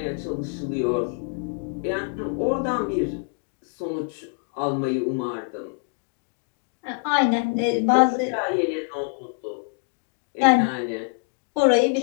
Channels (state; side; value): quieter; right; 39.9 dB